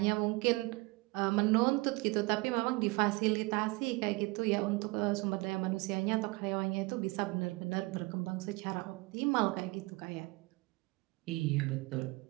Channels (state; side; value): quieter; left; 24.6 dB